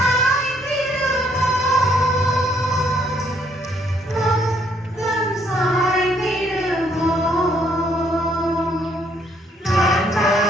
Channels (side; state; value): both; normal; correlation 0.68